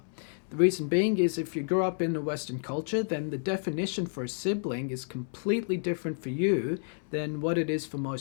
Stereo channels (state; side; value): silent; right; digital silence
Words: The reason being is if you grew up in a Western culture, then the definition for a sibling is completely different for you than what it is for